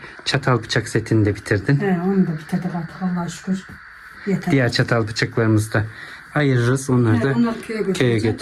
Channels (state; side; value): identical; both; correlation 1.00